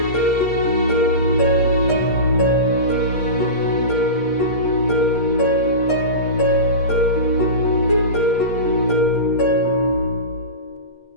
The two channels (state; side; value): late; right; 8.5 ms